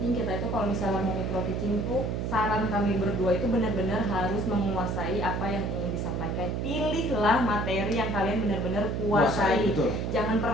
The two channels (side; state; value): right; noise; hum, 1 dB below the sound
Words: kita itu kalau misalnya mau micro teaching tuh, saran kami berdua itu benar-benar harus menguasai apa yang ingin disampaikan. Pilihlah materi yang kalian benar-benar kuasai. Jangan